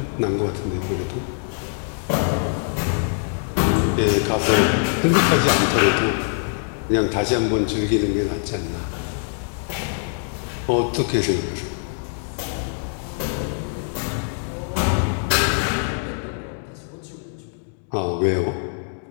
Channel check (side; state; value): right; silent; 63 dB below the other